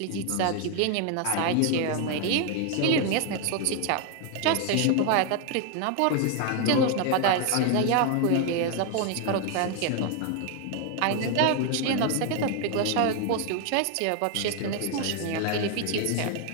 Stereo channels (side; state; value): both; different; correlation 0.01